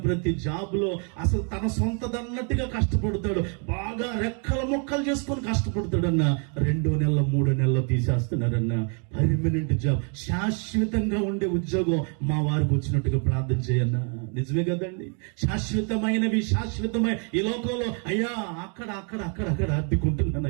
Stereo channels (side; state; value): left; quieter; 39.6 dB